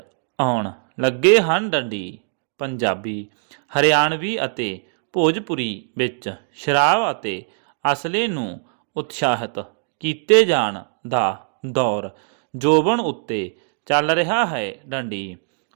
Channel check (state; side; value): silent; left; digital silence